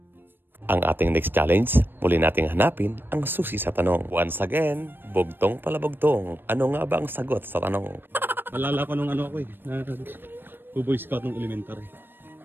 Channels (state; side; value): late; left; 0.097 ms